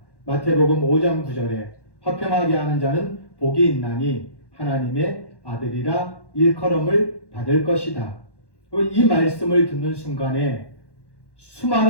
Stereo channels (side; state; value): right; late; 1.1 ms